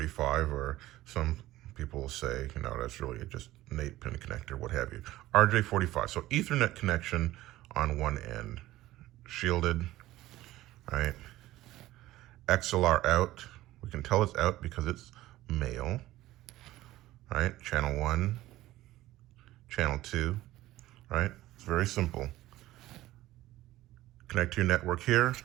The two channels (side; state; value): left; quieter; 16.1 dB